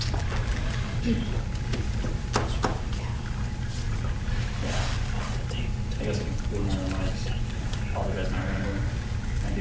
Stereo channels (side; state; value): both; identical; correlation 1.00